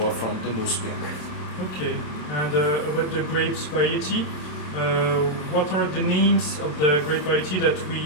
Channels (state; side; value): late; right; 27 ms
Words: from the Nussberg. Okay, and about the grapes variety, what are the names of the grape variety that